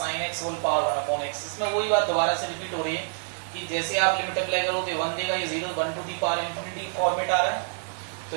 sin x whole power 1 upon x। इसमें वही बात दोबारा से रिपीट हो रही है कि जैसे आप लिमिट अप्लाई करोगे 1 देगा, ये 0 1 to the power infinity format आ रहा है। तो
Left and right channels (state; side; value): silent; left; digital silence